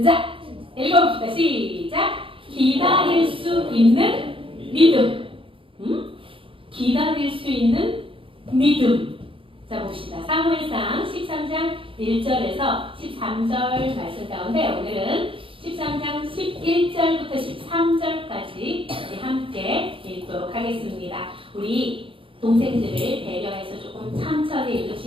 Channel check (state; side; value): late; left; 0.26 ms